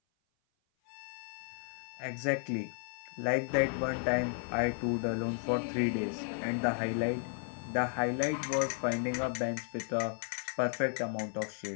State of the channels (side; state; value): right; silent; 55 dB below the other